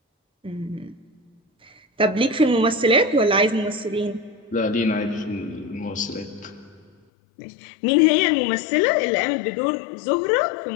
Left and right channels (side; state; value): right; drops out; at 6.9 s